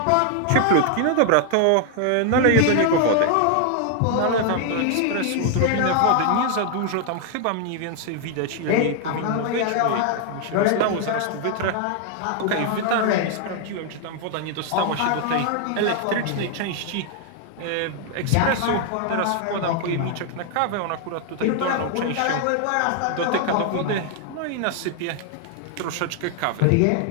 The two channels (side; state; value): both; different; correlation 0.00